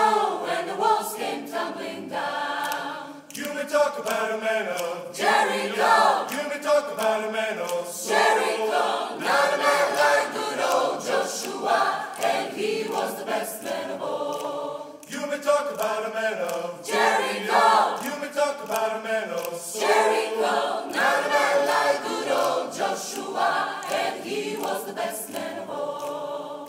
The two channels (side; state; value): both; identical; correlation 1.00